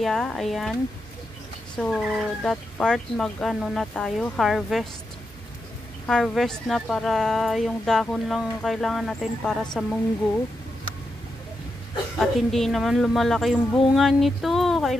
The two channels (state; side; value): normal; both; correlation 0.86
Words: Ayan. So that part mag-ano na tayo, harvest na, para yung dahon lang kailangan natin para sa munggo. At hindi naman lumalaki yung bunga nito.